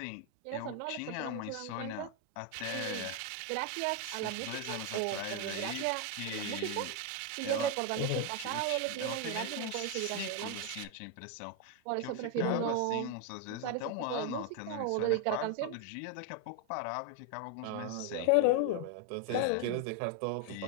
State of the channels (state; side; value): different; both; correlation 0.01